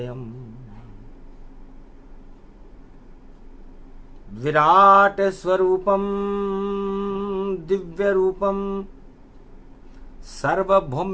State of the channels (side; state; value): both; identical; correlation 1.00